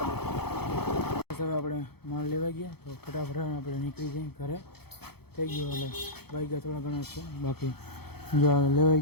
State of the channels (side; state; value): right; late; 0.96 ms